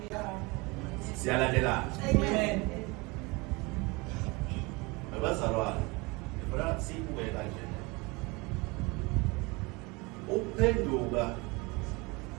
Siyalandela. Amen. Abazalwane, ngifuna sibuke kanje. Ukuphenduka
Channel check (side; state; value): left; quieter; 25.8 dB